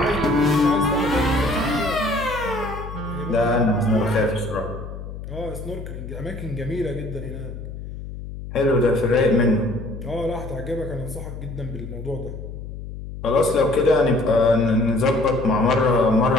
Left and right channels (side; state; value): left; noise; hum, 10 dB below the sound